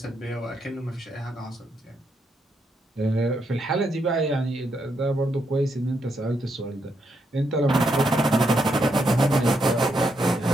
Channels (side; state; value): both; normal; correlation 0.79